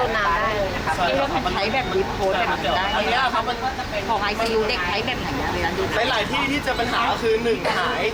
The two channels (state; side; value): identical; both; correlation 1.00